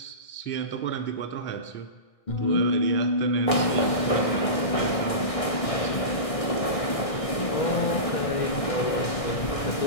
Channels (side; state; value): right; late; 1.6 ms